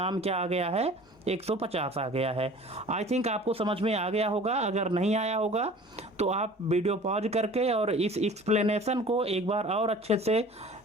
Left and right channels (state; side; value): normal; both; correlation 0.45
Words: क्या आ गया है, 150 आ गया है। आई थिंक आपको समझ में आ गया होगा। अगर नहीं आया होगा तो आप वीडियो पॉज करके और इस एक्सप्लेनेशन को एक बार और अच्छे से